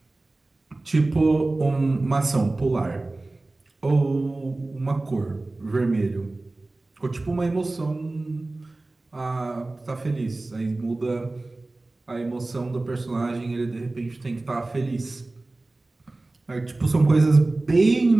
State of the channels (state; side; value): quieter; left; 3.0 dB